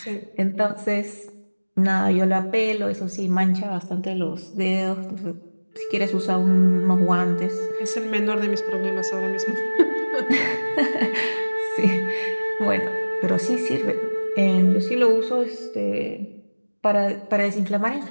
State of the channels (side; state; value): both; inverted; correlation -1.00